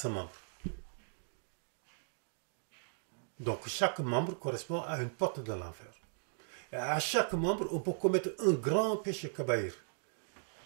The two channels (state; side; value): silent; left; digital silence